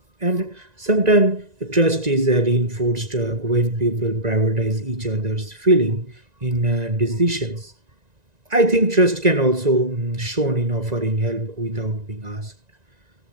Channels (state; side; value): late; left; 1.9 ms